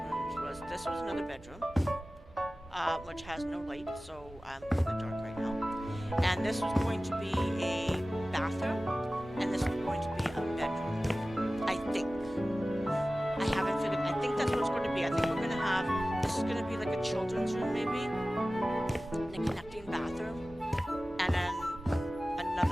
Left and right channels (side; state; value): both; normal; correlation 0.96